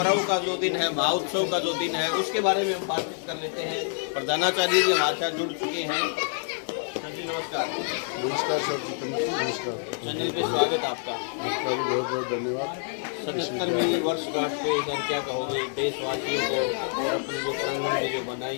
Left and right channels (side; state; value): right; silent; 60 dB below the other